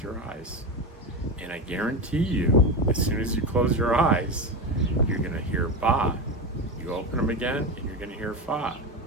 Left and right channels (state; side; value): normal; both; correlation 0.19